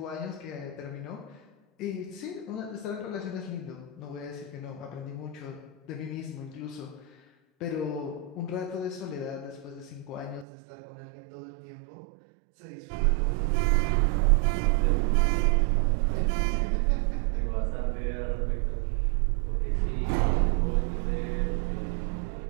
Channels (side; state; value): left; drops out; at 10.5 s